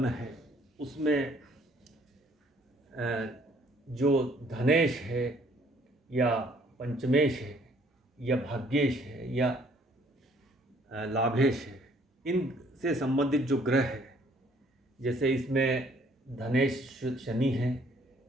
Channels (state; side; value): normal; both; correlation 0.61